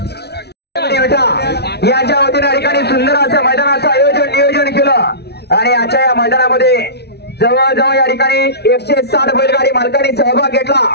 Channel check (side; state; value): right; late; 0.48 ms